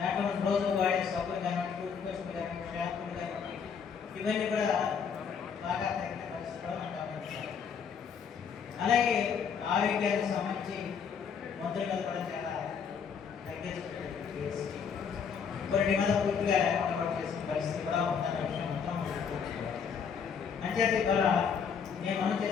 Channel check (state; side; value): quieter; right; 6.7 dB